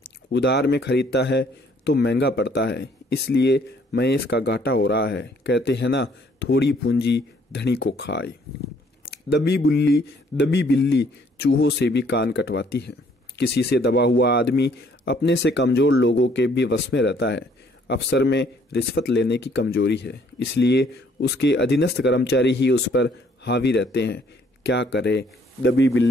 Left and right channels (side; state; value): both; normal; correlation 0.63